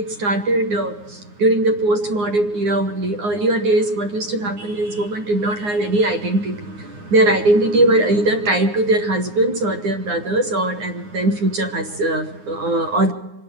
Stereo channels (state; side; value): late; left; 9.7 ms